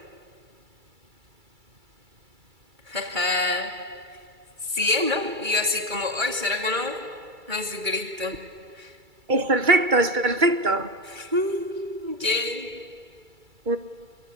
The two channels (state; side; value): late; left; 2.3 ms